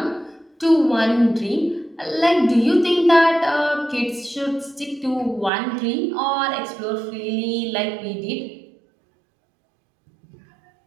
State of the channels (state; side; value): drops out; left; at 5.5 s